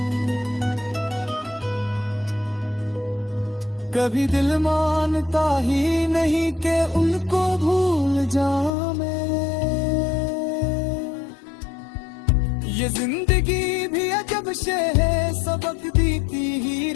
कभी दिल मानता ही नहीं कि उनको भूल जाऊं मैं। ये जिंदगी भी अजब शे है, सबक देती ही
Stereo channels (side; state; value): right; drops out; at 8.7 s